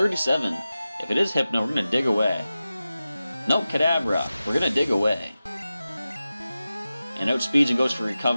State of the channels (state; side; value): inverted; both; correlation -0.94